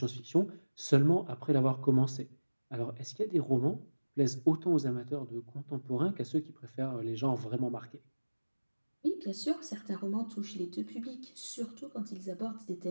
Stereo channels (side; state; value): both; inverted; correlation -1.00